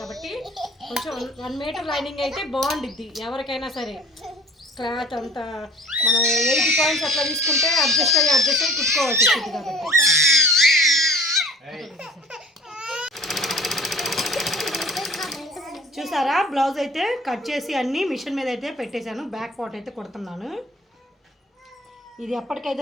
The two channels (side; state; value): both; normal; correlation 0.49